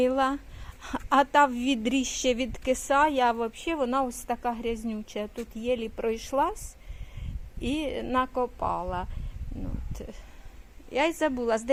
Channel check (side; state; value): both; identical; correlation 1.00